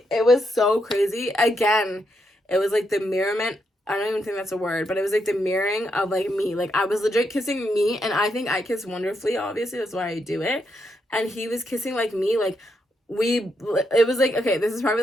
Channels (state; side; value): normal; both; correlation 0.80